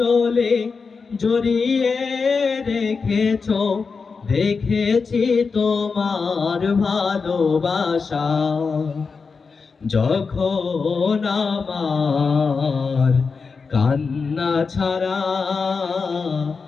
জড়িয়ে রেখেছো, দেখেছি তোমার ভালোবাসা। যখন আমার কান্না ছাড়া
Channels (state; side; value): quieter; right; 4.9 dB